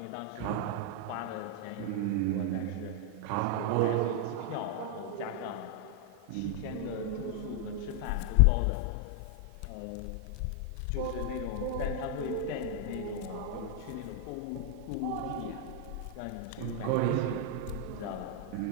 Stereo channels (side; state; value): both; different; correlation 0.00